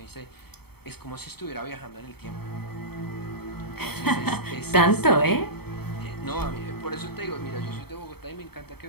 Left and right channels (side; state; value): right; late; 0.96 ms